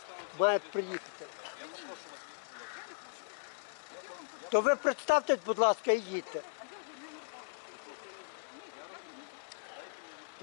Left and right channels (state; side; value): silent; right; digital silence